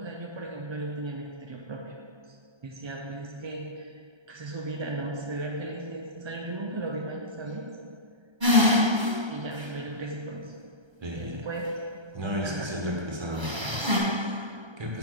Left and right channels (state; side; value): late; left; 1.3 ms